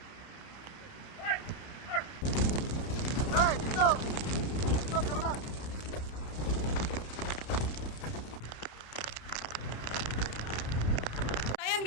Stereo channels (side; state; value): right; late; 31 ms